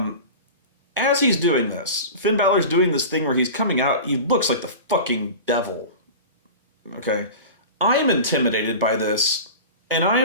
as he's doing this, Finn Balor's doing this thing where he's coming out, he looks like the fucking devil. Okay? I'm intimidated by this, and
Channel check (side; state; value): both; inverted; correlation -0.33